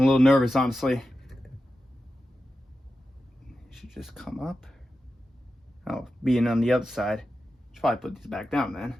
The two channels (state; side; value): normal; both; correlation 0.91